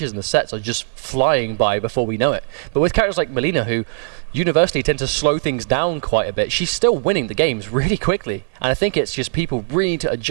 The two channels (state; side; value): silent; left; 58 dB below the other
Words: and the sets are just flying by before we know it. But with characters like Melina, who universally tend to slow things down quite a bit, she's still winning the games really quickly. And I think it's just people really need to